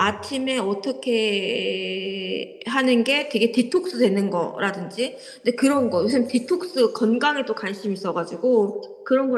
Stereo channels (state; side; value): identical; both; correlation 1.00